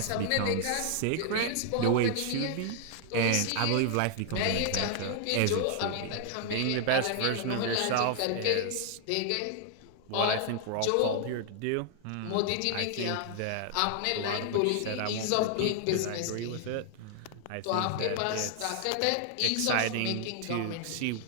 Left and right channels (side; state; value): both; different; correlation 0.00